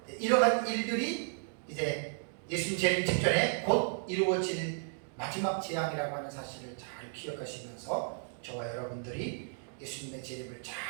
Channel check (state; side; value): silent; left; 55 dB below the other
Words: 이러한 일들이 이제 예수님 재림 직전에 곧 이루어질 마지막 재앙이라고 하는 사실을 잘 기억하시면서 저와 여러분들이 예수님의 재림을